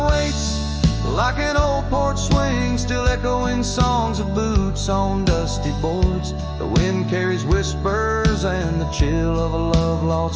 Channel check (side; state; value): both; identical; correlation 1.00